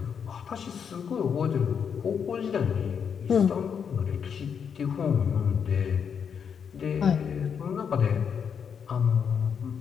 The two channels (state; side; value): quieter; right; 7.1 dB